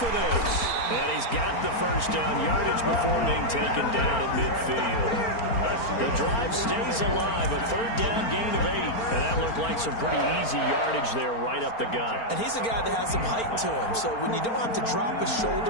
this. And he's got the first down yardage before being taken down at midfield. The drive stays alive, a third down gain of 8. And that looked like some pretty easy yardage there right up the gut. And he's a guy that has some height to him. So when you don't have to drop a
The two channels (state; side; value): late; right; 4.4 ms